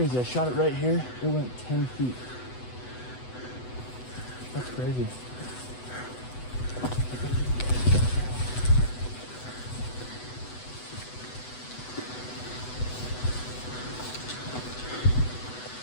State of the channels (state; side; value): late; right; 8.0 ms